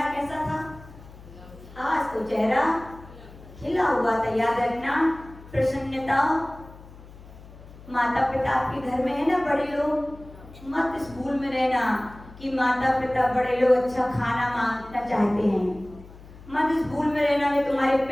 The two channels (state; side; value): noise; left; hum, 19 dB below the sound